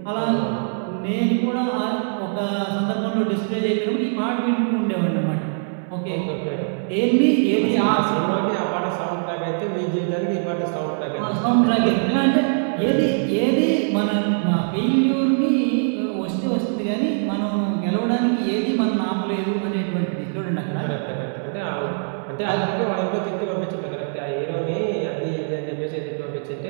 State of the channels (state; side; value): silent; left; 64 dB below the other